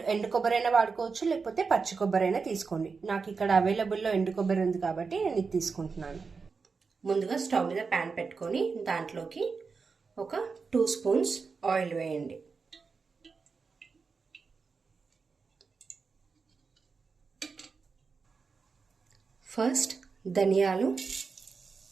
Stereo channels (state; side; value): quieter; left; 4.9 dB